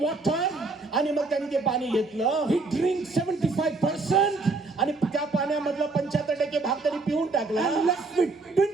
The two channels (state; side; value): quieter; left; 3.6 dB